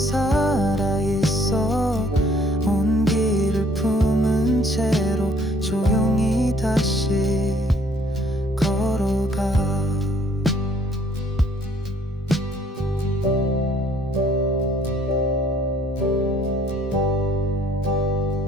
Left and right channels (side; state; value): both; normal; correlation 0.61